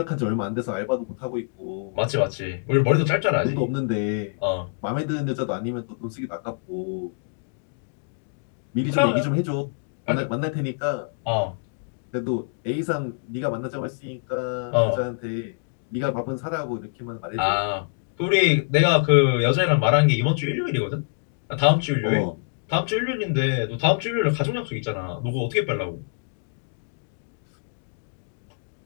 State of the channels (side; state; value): right; silent; digital silence